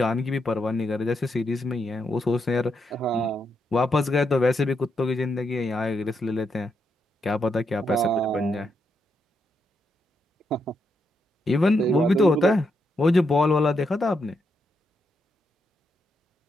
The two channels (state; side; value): normal; both; correlation 0.81